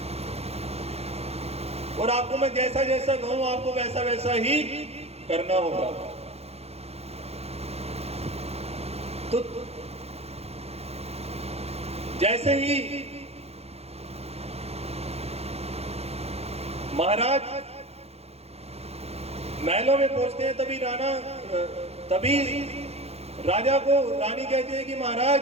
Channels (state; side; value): late; left; 0.30 ms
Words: और आपको मैं जैसा जैसा कहूं आपको वैसा वैसा ही करना होगा। तो जैसे ही महाराज महलों में पहुंचते हैं तभी राजा को रानी कहती है कि